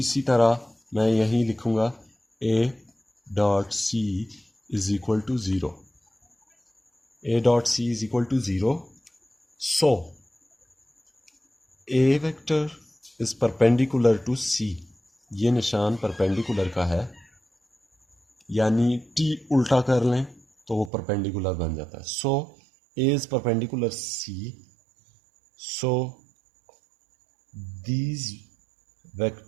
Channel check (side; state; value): left; drops out; at 20.9 s